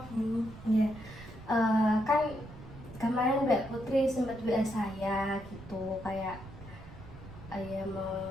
Bu. Ya, kan kemarin Mbak Putri sempat WA saya gitu kayak ya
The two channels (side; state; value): right; noise; rumble, 16 dB below the sound